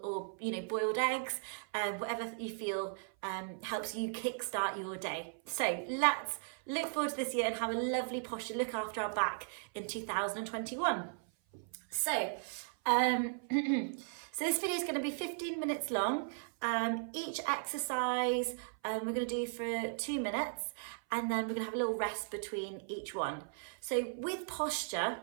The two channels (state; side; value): silent; left; 53 dB below the other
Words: or boiled eggs, whatever you feel helps you kickstart your day. So let's look forward to this year and have a lovely posture, look after our back in 2021. So so this video is going to be 15 minutes long. Each exercise we're going to do for 2 minutes, and then we're going to have a little rest between each one. So with posture,